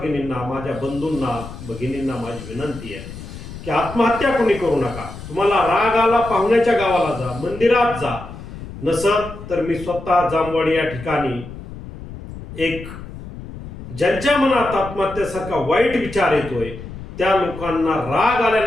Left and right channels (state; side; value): noise; left; rumble, 12 dB below the sound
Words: माझ्या बंधूंना, भगिनींना माझी विनंती आहे की आत्महत्या कोणी करू नका. तुम्हाला राग आला, पाहुण्याच्या गावाला जा, मंदिरात जा. नसत तर मी स्वतः जामवाडी या ठिकाणी एक ज्यांच्या मनात आत्महत्येसारखा वाईट विचार येतोय, त्या लोकांना राग